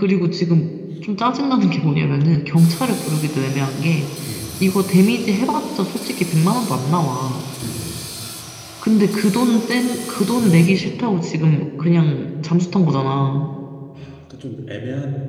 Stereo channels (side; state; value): both; identical; correlation 1.00